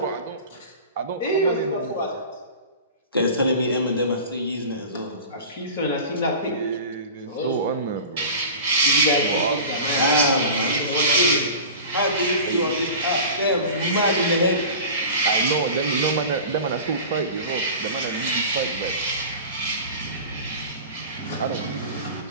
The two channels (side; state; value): both; inverted; correlation -0.36